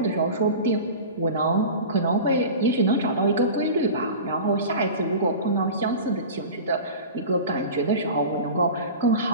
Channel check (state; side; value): inverted; both; correlation -0.34